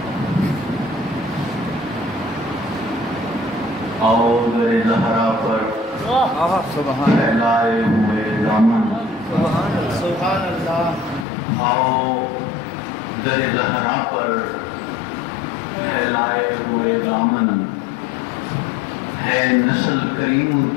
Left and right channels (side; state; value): right; drops out; at 11.2 s